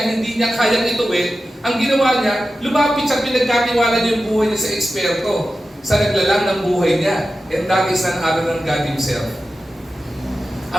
hindi niya kayang ituwid, ang ginawa niya, lumapit siya, pinagkatiwala niya yung buhay niya sa eksperto, sa naglalang ng buhay niya. And that is none other than God Himself.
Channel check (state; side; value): normal; both; correlation 0.93